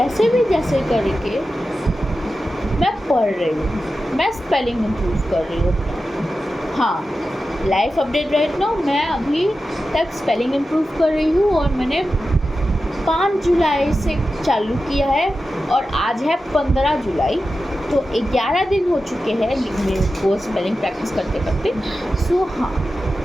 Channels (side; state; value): both; normal; correlation 0.92